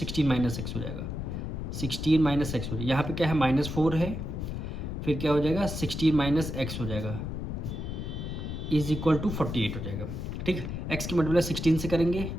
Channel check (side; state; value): left; noise; rumble, 5 dB below the sound